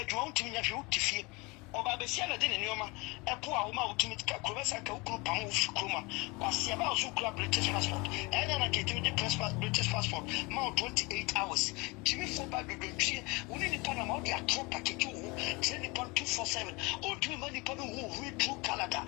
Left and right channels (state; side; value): quieter; right; 26.2 dB